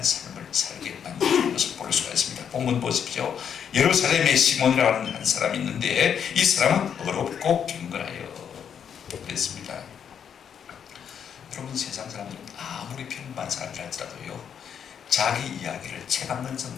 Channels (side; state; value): right; quieter; 8.0 dB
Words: 삶을 살게 만드는 것을 볼 수가 있습니다. 본문 보십시오. 예루살렘에 시몬이라는 한 사람이 있는데 이 사람은 어렵고 경건하여 그랬습니다. 여러분 세상 사람들은 아무리 평범한 사람들 할지라도요, 자기 이야기를 책 한 권